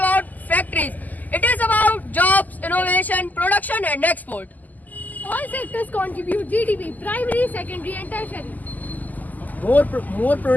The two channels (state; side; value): late; right; 0.082 ms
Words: factories. It is about jobs, innovation, production, and export. All sectors contribute GDP: primary, secondary, and tertiary. More